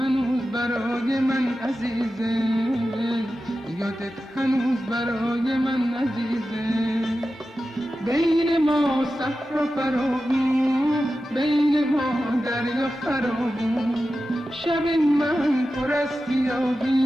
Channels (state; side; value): normal; both; correlation 0.92